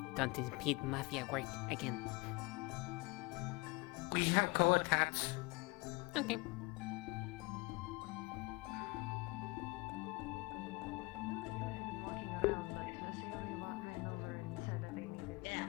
Don't impede mafia work again. We have co-attached. Okay.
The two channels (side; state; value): right; quieter; 25.2 dB